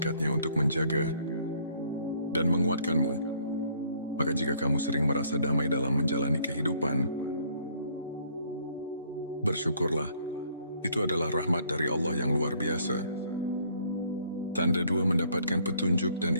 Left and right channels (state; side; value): inverted; both; correlation -0.63